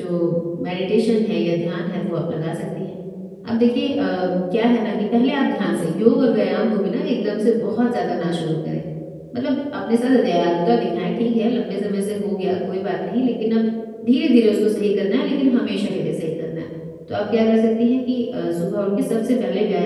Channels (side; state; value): both; identical; correlation 1.00